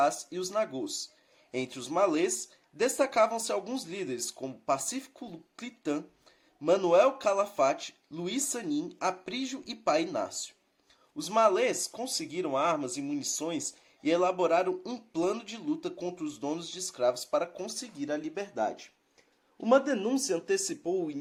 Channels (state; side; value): identical; both; correlation 1.00